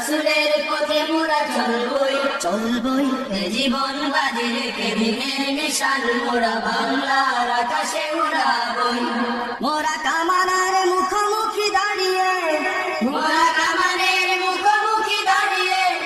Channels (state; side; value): identical; both; correlation 1.00